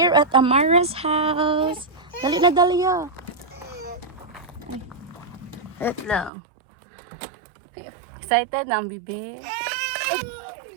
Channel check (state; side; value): drops out; left; at 6.3 s